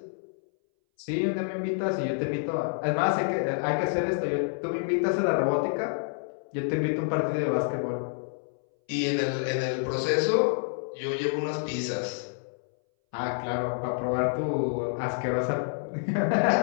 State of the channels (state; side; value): silent; right; 59 dB below the other